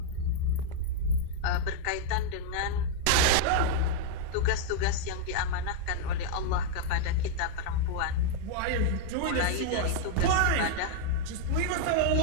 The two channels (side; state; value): both; different; correlation -0.01